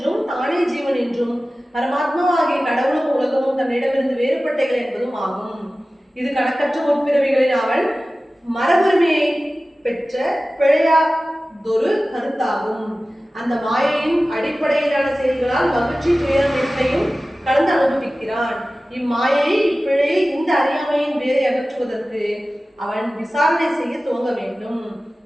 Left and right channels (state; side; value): normal; both; correlation 0.96